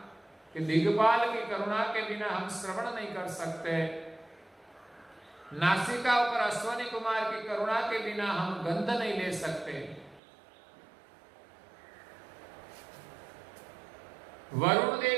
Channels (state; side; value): drops out; left; at 10.2 s